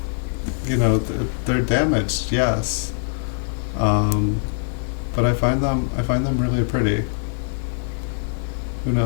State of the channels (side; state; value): right; silent; digital silence